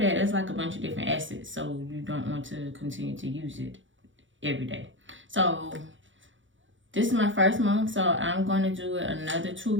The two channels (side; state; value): left; late; 0.56 ms